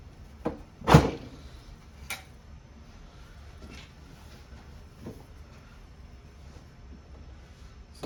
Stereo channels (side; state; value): both; identical; correlation 1.00